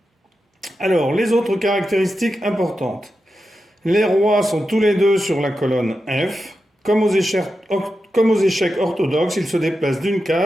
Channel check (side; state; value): both; normal; correlation 0.90